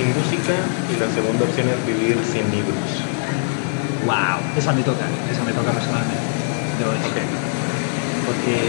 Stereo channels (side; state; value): right; silent; 65 dB below the other